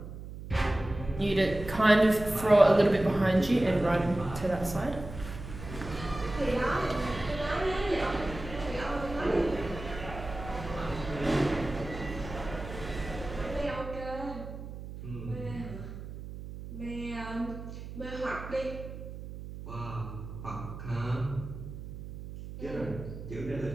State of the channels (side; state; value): right; noise; hum, 11 dB below the sound